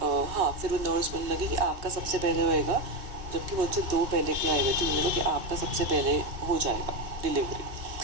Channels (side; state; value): left; late; 2.7 ms